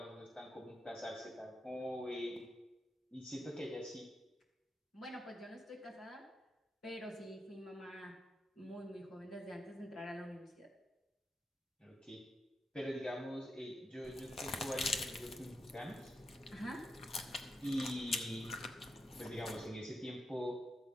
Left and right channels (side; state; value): both; normal; correlation 0.86